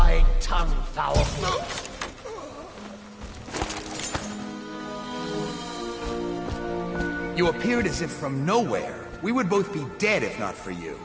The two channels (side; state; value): both; identical; correlation 1.00